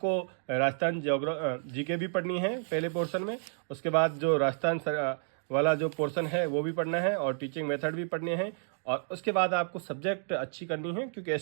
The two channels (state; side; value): silent; left; digital silence